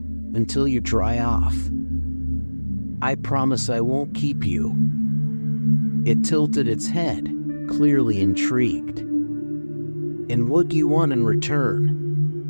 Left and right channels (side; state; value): both; inverted; correlation -1.00